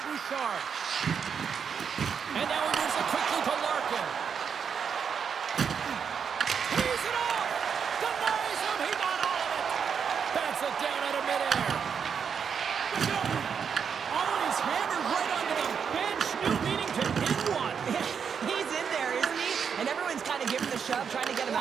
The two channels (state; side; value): quieter; left; 6.9 dB